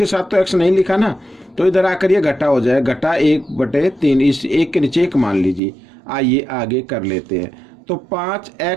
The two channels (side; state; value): left; drops out; at 5.6 s